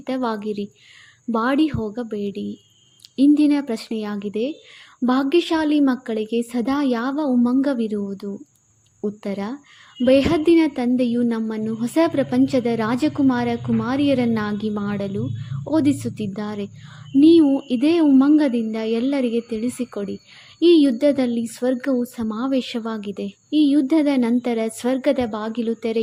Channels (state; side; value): identical; both; correlation 1.00